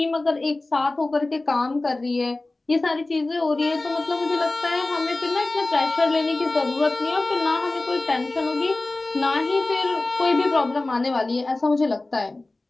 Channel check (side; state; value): right; quieter; 3.0 dB